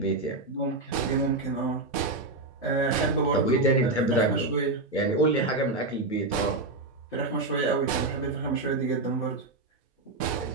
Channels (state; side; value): quieter; left; 3.1 dB